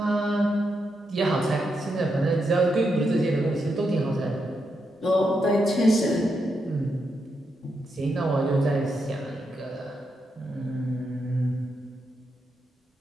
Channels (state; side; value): normal; both; correlation 0.83